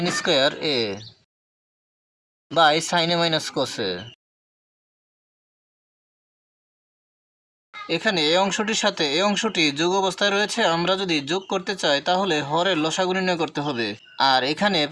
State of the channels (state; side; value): identical; both; correlation 1.00